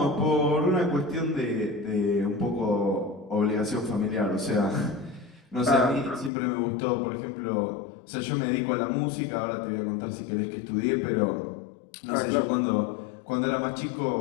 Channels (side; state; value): right; drops out; at 6.3 s